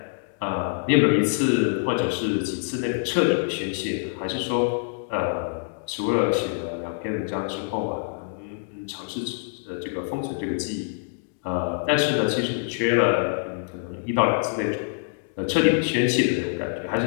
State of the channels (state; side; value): silent; right; digital silence